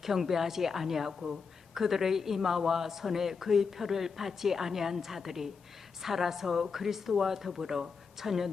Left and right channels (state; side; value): quieter; right; 5.3 dB